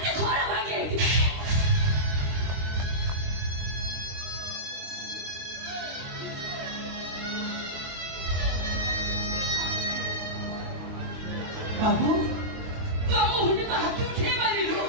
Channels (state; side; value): late; left; 22 ms